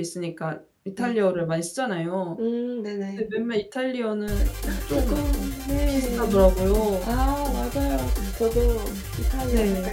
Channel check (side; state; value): both; identical; correlation 1.00